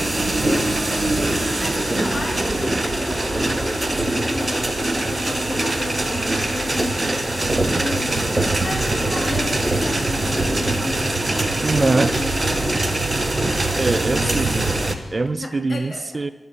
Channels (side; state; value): both; normal; correlation 0.93